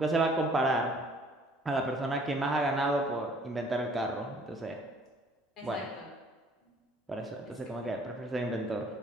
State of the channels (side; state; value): both; normal; correlation 0.57